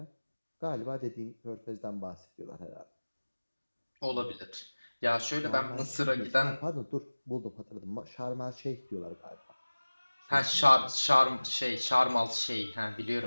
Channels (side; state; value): both; inverted; correlation -1.00